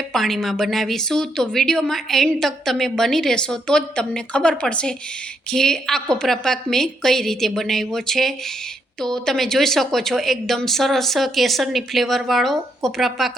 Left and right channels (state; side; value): normal; both; correlation 0.77